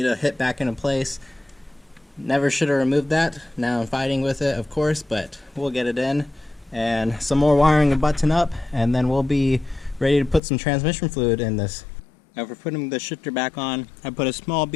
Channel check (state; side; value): drops out; right; at 10.4 s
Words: to hit back into place. Never should have removed that. Now I'm fighting with it, of course, but we'll get it in. And some more wiring to button up, and then we'll be ready to put some transmission fluid in this. Now for putting the shifter back on, I put a small